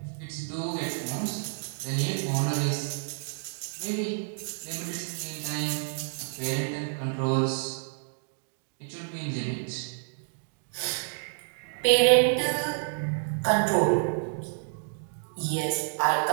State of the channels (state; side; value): silent; left; digital silence